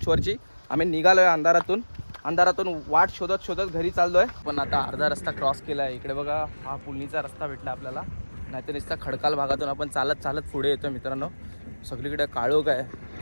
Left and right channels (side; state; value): both; inverted; correlation -1.00